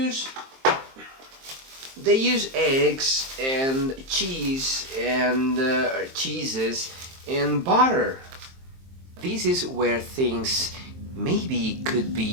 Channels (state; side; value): late; left; 23 ms